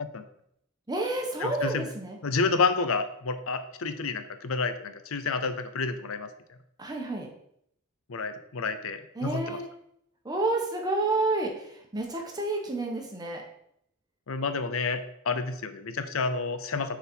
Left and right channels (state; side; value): normal; both; correlation 0.08